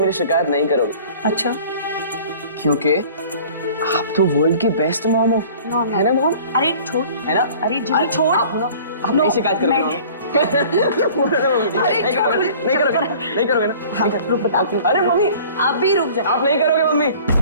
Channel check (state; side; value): inverted; both; correlation -0.48